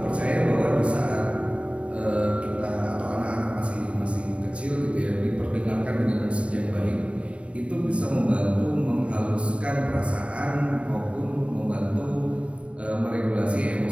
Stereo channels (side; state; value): left; late; 0.062 ms